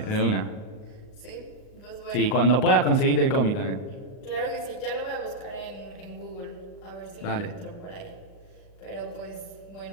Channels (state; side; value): late; right; 38 ms